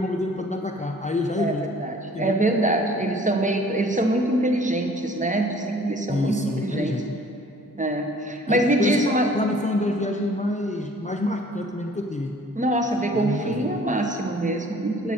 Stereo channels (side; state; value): both; normal; correlation 0.53